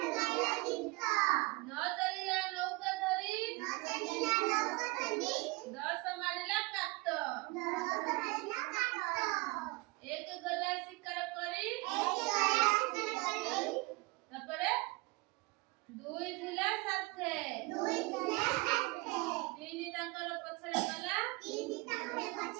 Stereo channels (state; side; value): quieter; left; 24.6 dB